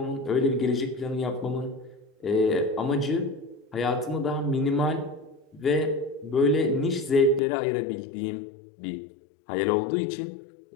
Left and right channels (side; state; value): right; drops out; at 7.4 s